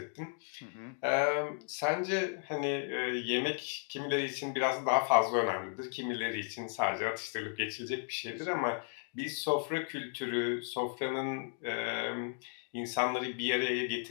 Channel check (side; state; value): right; silent; 55 dB below the other